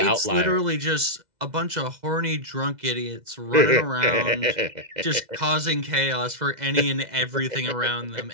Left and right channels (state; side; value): late; left; 2.0 ms